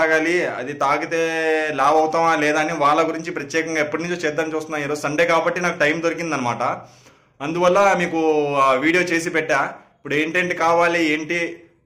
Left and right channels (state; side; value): identical; both; correlation 1.00